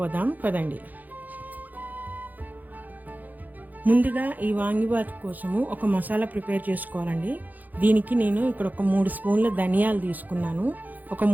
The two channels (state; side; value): late; left; 0.083 ms